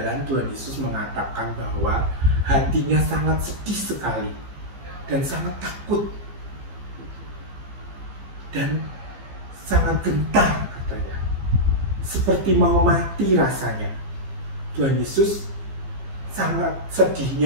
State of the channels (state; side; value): late; left; 15 ms